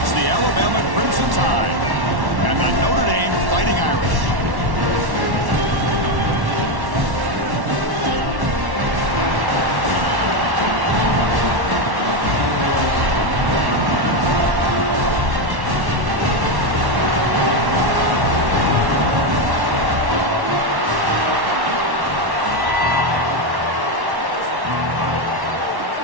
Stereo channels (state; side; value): late; left; 1.1 ms